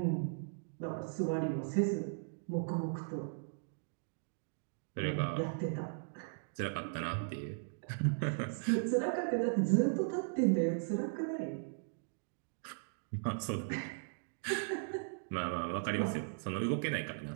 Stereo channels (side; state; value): left; silent; digital silence